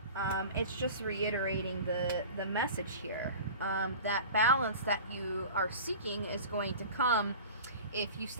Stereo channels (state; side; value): inverted; both; correlation -0.38